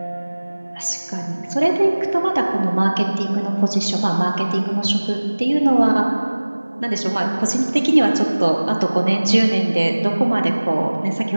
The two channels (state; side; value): inverted; both; correlation -1.00